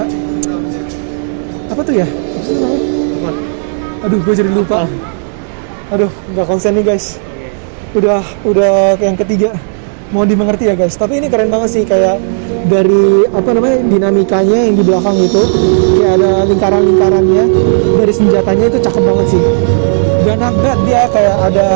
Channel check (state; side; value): silent; left; digital silence